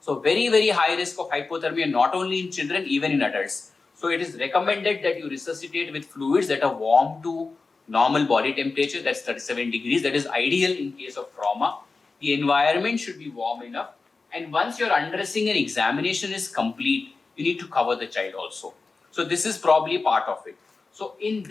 So very, very high risk of hypothermia, not only in children, even in adults. So it is recommended that you resuscitate with fluids that are warm to normal body temperature, that's 37 degrees. That is ideal in case of trauma. The environment should be warm enough. And once your undressing and examination is complete, you need to cover the child also. So this is probably part of it. So in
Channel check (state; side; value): quieter; right; 4.1 dB